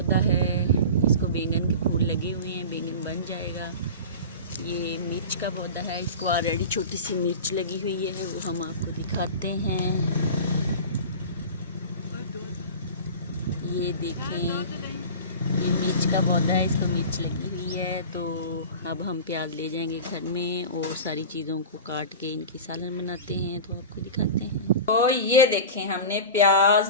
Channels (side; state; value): both; inverted; correlation -0.32